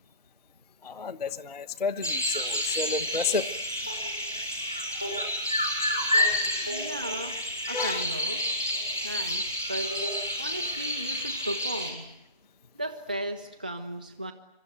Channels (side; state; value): both; inverted; correlation -0.34